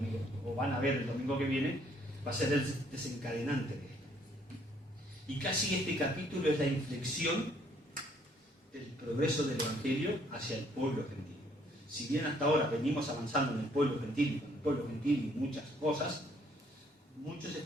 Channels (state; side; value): normal; both; correlation 0.65